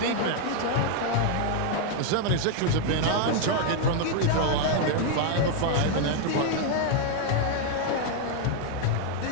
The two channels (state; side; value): different; both; correlation 0.00